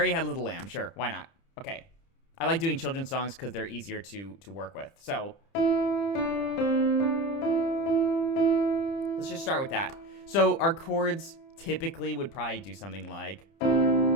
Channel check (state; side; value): late; right; 30 ms